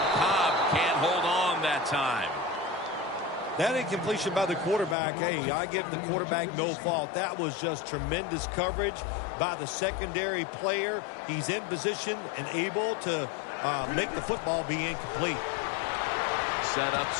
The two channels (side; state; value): right; drops out; at 5.0 s